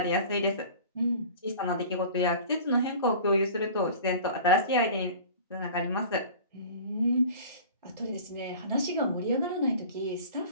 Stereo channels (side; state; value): both; inverted; correlation -0.41